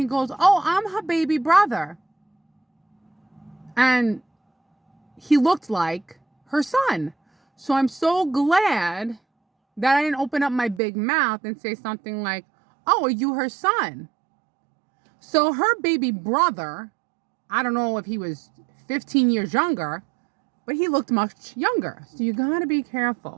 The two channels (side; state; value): left; drops out; at 10.8 s